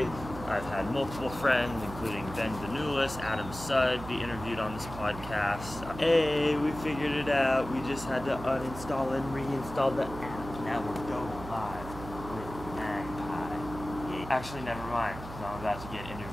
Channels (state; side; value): noise; right; hum, 12 dB below the sound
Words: I've had multiple friends, including Ben Vanulis, Adam Sudd, be interviewed on this podcast. Hey, we figured it out. We just had to uninstall and reinstall the app. Now we're going live with Magpie. Yeah. Actually, never mind. I'm about to get